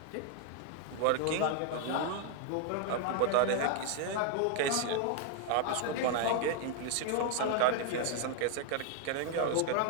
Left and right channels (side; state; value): both; different; correlation 0.00